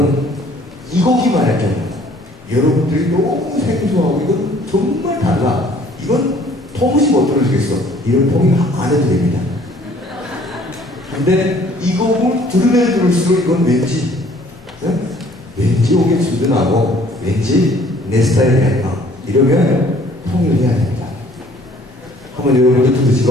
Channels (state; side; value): normal; both; correlation 0.57